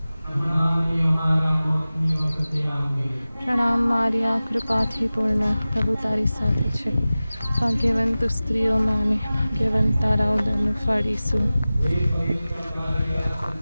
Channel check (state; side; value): inverted; both; correlation -0.97